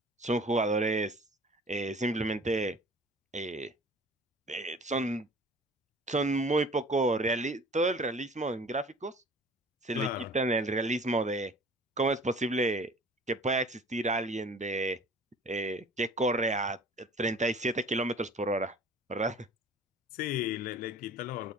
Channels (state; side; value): normal; both; correlation 0.46